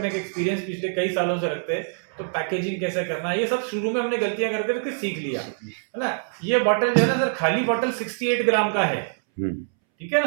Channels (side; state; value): left; silent; 62 dB below the other